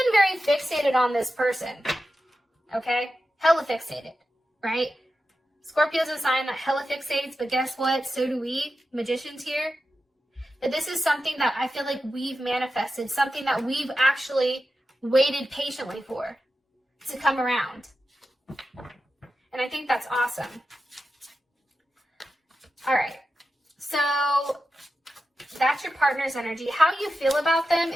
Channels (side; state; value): both; normal; correlation 0.91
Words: very fixated on this person, okay? Hella fixated, right? Scorpio's a sign that hella fixates, but guess what? So do we, magicians here. But this is something that I feel like we've manifested, something that we've actually waited patiently for to come around. And I think that's awesome. All right, so that's your partner's energy. How you feel about them